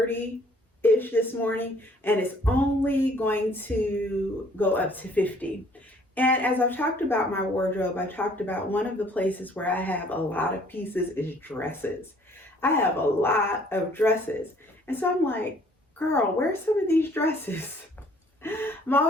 this morning, and it's only going to go up to 50. And as I've talked about my wardrobe, I talked about one of the places where I have a lot of pieces is dresses. I have a lot of dresses. And so I'm like, girl, where's some of these dresses? I'm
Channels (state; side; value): normal; both; correlation 0.59